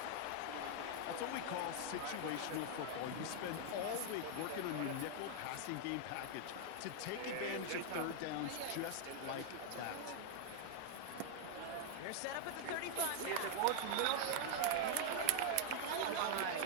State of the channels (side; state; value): both; different; correlation 0.00